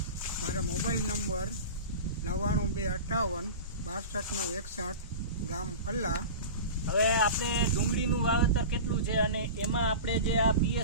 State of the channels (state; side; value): inverted; both; correlation -0.31